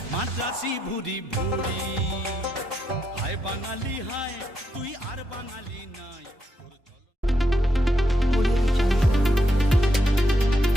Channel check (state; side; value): normal; both; correlation 0.81